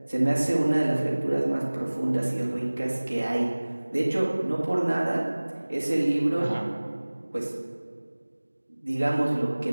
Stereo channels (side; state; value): both; inverted; correlation -1.00